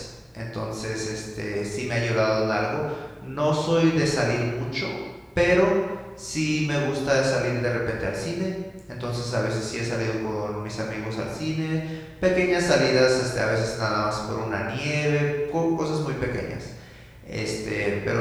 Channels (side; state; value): both; identical; correlation 1.00